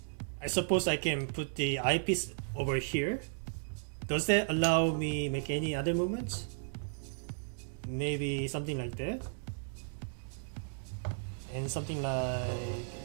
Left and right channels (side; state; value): left; silent; digital silence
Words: I suppose I can put the eyepiece over here. Does that allow me make any other movements? Maybe something like that. And something like